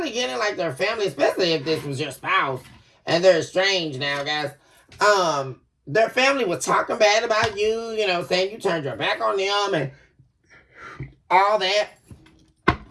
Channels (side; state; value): both; identical; correlation 1.00